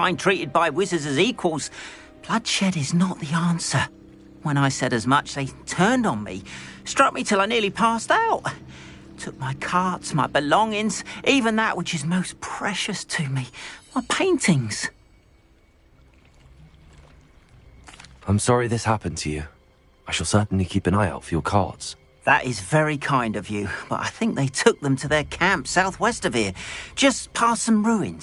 treated by wizards as equals, Bloodshed is not the answer. When I said as much, they turned on me, struck me till I nearly passed out. Took my carts, my belongings, even that which is most precious to me, my paintings. I'm sorry this happened to you. I shall certainly keep an eye out for your cards. That is very kind of you, but I think they took them to their camp southwest of here, just past some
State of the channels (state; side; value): identical; both; correlation 1.00